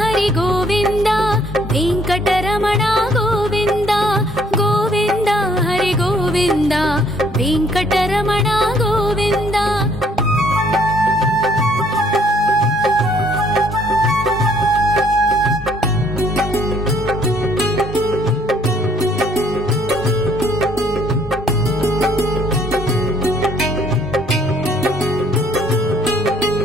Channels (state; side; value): normal; both; correlation 0.63